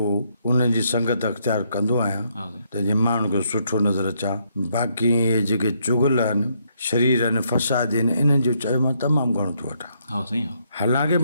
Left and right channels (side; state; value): both; inverted; correlation -0.74